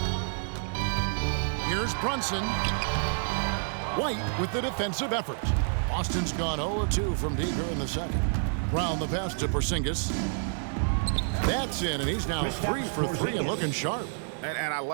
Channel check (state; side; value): silent; left; 59 dB below the other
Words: Here's Brunson. White with the defensive effort. Boston's gone 0-2 from deep here in the second. Brown the pass to Porzingis. That's in, and he's now 3 for 3 and looking sharp. And I